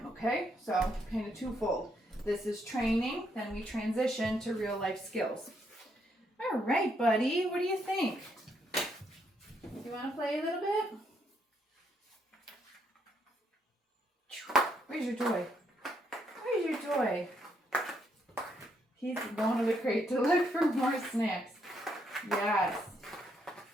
okay? So kind of twofold. This is training, then we transition to real life skills. All right, buddy, what do you think? You want to play a little bit? Where's your toy? Where's your toy? He's going to the crate to look for more snacks. Yes.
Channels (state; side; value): normal; both; correlation 0.74